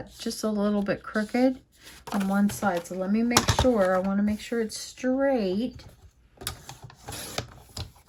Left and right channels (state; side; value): identical; both; correlation 1.00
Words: just a little bit crooked on one side. So let me make sure. I want to make sure it's straight.